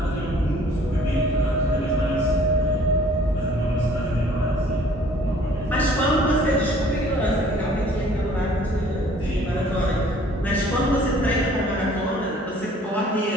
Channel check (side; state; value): both; normal; correlation 0.55